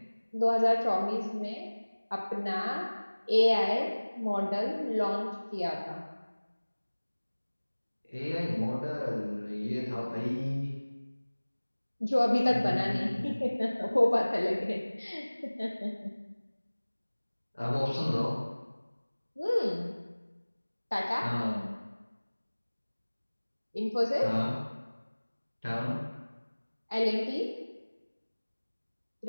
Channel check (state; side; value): inverted; both; correlation -1.00